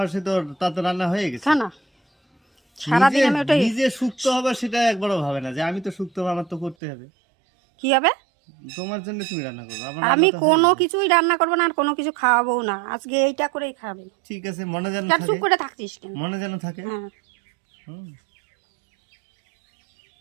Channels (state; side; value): drops out; left; at 6.8 s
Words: সে তো তার তো রান্না হয়ে গেছে। খা না সারাদিন আমি ওটাই। নিজে সুক্ত হবে সেটা একবারও ভাবে না যে আমি তো সুক্ত হবো, আমার তো করতে হবে। কি হবে? তোমার জন্য তুমি রান্না করবে। আমি কোনো কিছুই রান্না করবো না আর কোনো কিছু খাওয়াবো না। আজকে এইটা করেই খাবে। ঠিক আছে, মনে যেন চুপ থাকে। করে থাকছিস কেন? মনে যেন থাকে। হ্যাঁ